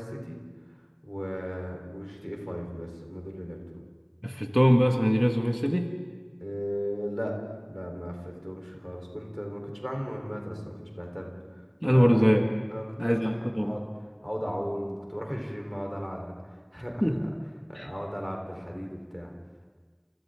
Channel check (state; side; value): identical; both; correlation 1.00